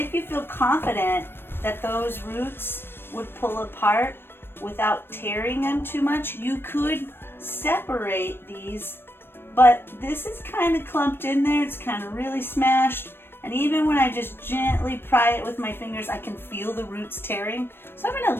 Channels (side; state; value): right; late; 0.10 ms